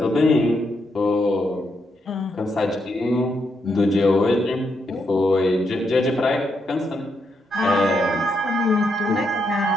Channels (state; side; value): normal; both; correlation 0.80